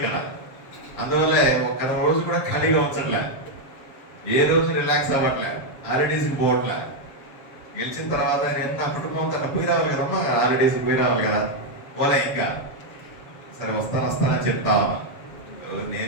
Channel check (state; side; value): late; right; 7.4 ms